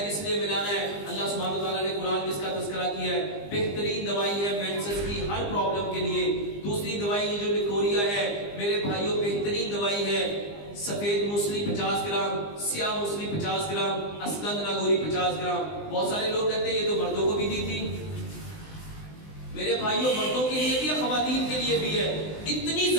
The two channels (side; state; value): right; late; 20 ms